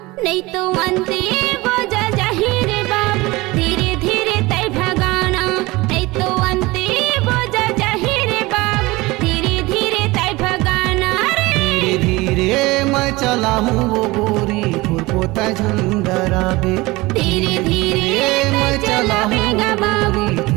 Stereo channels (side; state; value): left; quieter; 21.4 dB